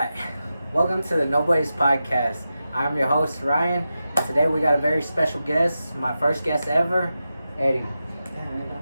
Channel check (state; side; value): inverted; both; correlation -0.91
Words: welcome to the No Boys Podcast. I'm your host, Ryan, and today we got a very special guest, my first guest ever, Eddie.